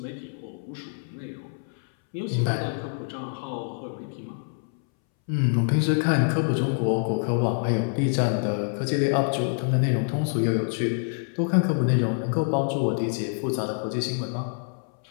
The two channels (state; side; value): silent; right; 61 dB below the other